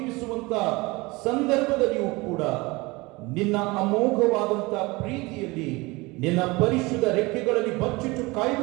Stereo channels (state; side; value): quieter; left; 23.4 dB